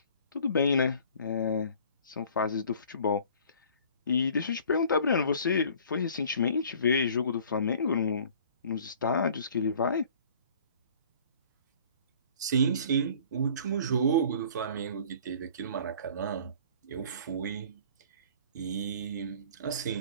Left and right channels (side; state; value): both; inverted; correlation -0.51